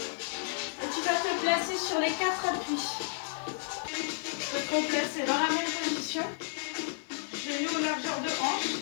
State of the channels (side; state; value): right; silent; digital silence